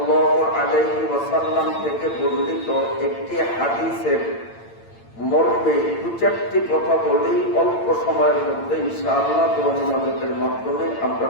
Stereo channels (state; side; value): late; right; 8.8 ms